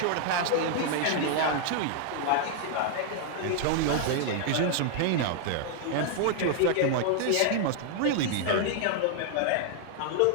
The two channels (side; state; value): both; different; correlation 0.00